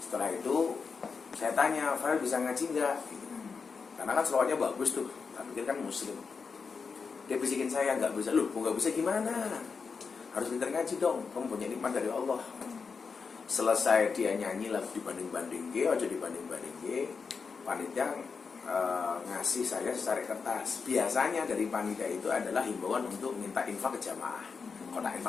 itu saya tanya, Farel bisa ngaji nggak? Karena kan selawatnya bagus tuh, tak pikir kan muslim. Dia bisikin saya, nggak bisa. Loh, nggak bisa gimana? Harus pintar ngaji dong, kamu punya nikmat dari Allah. Selesai dia nyanyi lagu dibanding-banding, aja dibanding-banding, panitia ngasih saya secari kertas. Biasanya dari panitia itu adalah himbauan untuk minta infak ke jamaah, kotak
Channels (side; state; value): right; quieter; 5.3 dB